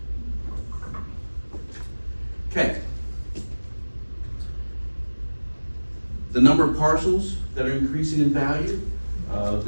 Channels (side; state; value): both; inverted; correlation -1.00